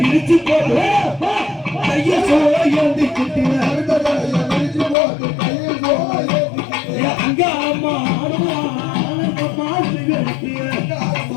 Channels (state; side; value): drops out; right; at 5.0 s